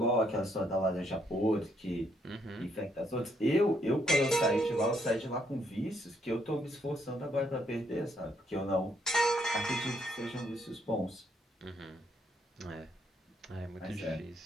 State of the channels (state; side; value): normal; both; correlation 0.72